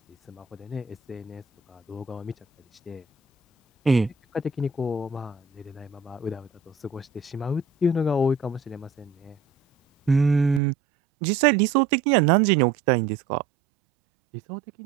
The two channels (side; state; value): left; drops out; at 10.6 s